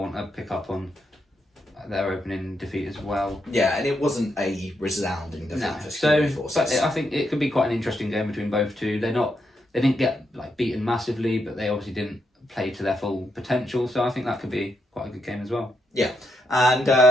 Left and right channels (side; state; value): both; normal; correlation 0.80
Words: to pick up on their opening defeat as well. Yeah, and it wasn't a resounding defeat No, for so Security Forces. but I think it could be quite an interesting game between both two. They didn't get like beaten massively, but they obviously didn't play to their full potential. So I think that could be quite a good game as well. Yeah, and